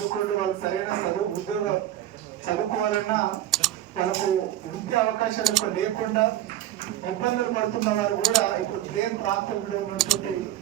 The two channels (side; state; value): left; quieter; 13.0 dB